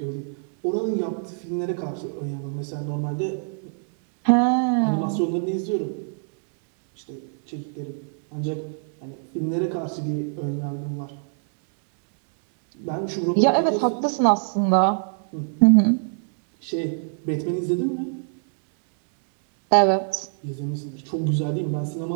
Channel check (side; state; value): left; silent; digital silence